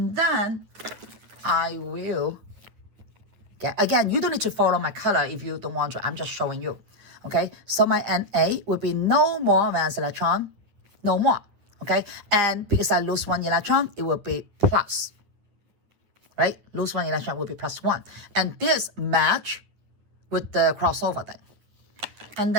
then I will get, again, you don't need to follow my color if you don't want to. I'm just showing you. Okay, so my Na will be no more valence electron, no more. Okay, and because I lose 1 electron, it will be plus. Right, lose 1 electron will be +1, and this match with the crossover thing. And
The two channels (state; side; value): late; left; 9.8 ms